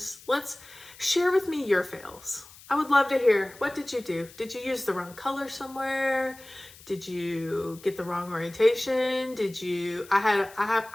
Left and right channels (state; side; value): noise; left; hiss, 21 dB below the sound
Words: Let's share with me your fails. I would love to hear, what did you do? Did you use the wrong color somewhere? Did you get the wrong orientation?